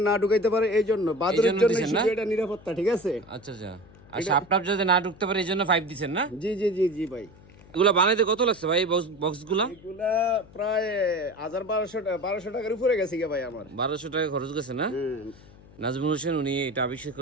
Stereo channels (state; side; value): noise; left; hum, 23 dB below the sound